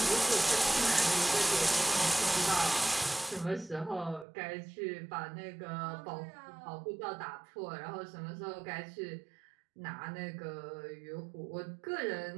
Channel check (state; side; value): drops out; left; at 4.2 s